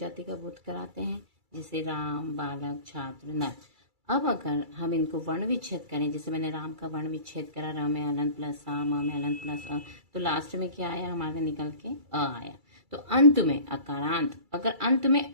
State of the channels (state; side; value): late; left; 2.3 ms